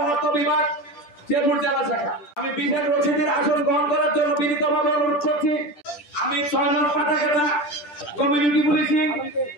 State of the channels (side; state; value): right; late; 10 ms